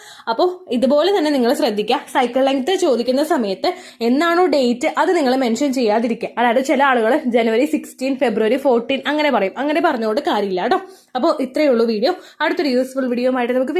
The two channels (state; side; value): identical; both; correlation 1.00